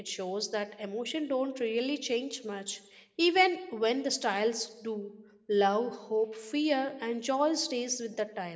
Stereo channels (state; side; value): identical; both; correlation 1.00